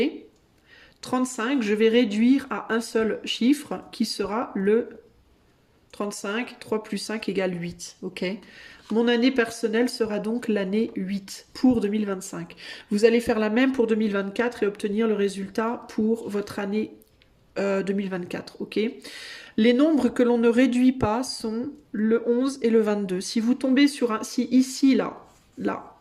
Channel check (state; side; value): identical; both; correlation 1.00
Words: ? 35, je vais réduire à un seul chiffre qui sera le 35, 3 plus 5 égale 8, ok ? Mon année personnelle sera donc l'année 8 pour 2025. Vous allez faire la même pour 2024 et obtenir le résultat pour votre année 2024, ok ? Les nombres que l'on ne réduit pas sont le 11 et le 22. Si vous tombez sur un... Si ici,